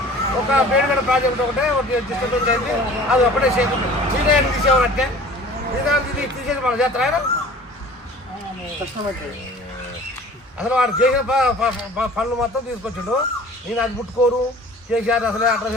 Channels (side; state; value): both; normal; correlation 0.46